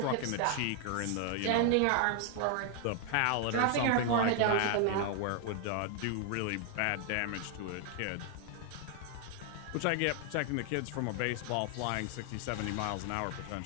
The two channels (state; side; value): different; both; correlation 0.00